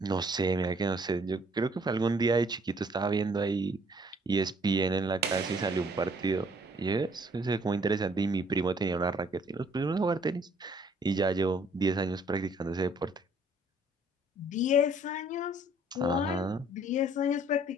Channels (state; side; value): normal; both; correlation 0.61